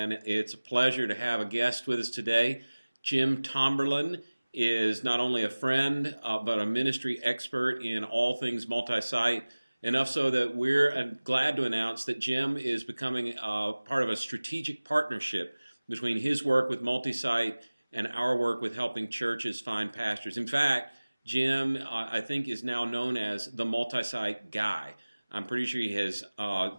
it's a pleasure to have a guest with us today. Jim Tomberlin is not only a friend, but a ministry expert in all things multi-site, enough so that we're glad to announce that Jim is becoming part of a strategic partnership between his work with MultiSite and our work with helping churches find pastors. In fact, Jim, I think, is now known as the multi-site guy. I'm pretty sure he has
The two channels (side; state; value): both; inverted; correlation -1.00